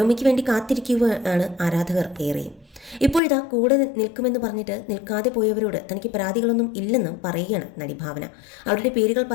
വേണ്ടി കാത്തിരിക്കുകയാണ് ആരാധകർ ഏറെയും. ഇപ്പോഴിതാ കൂടെ നിൽക്കുമെന്ന് പറഞ്ഞിട്ട് നിൽക്കാതെ പോയവരോട് തനിക്ക് പരാതികളൊന്നും ഇല്ലെന്നും പറയുകയാണ് നടി ഭാവന. അവരുടെ പേരുകൾ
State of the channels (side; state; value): right; drops out; at 3.2 s